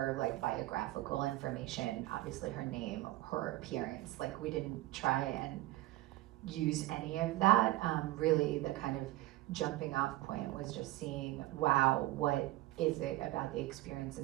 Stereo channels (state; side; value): quieter; left; 17.1 dB